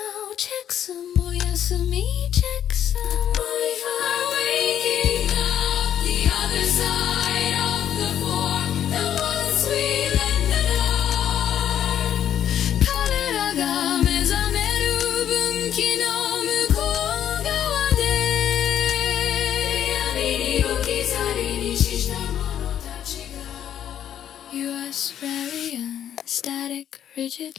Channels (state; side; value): quieter; right; 10.1 dB